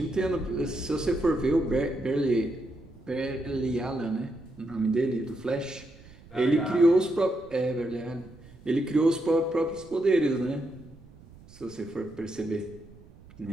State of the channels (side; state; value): right; noise; rumble, 22 dB below the sound